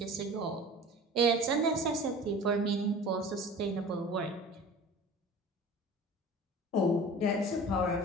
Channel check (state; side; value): normal; both; correlation 0.40